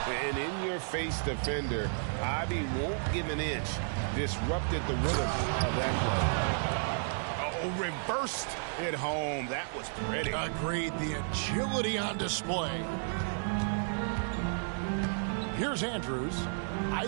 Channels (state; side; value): silent; left; digital silence